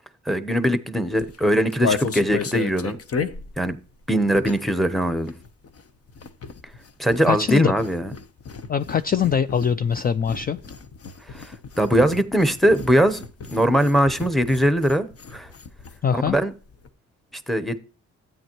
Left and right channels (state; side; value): normal; both; correlation 0.74